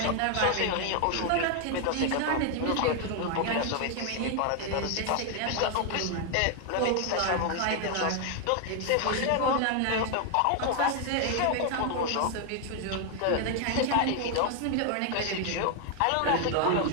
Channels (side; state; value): both; different; correlation 0.01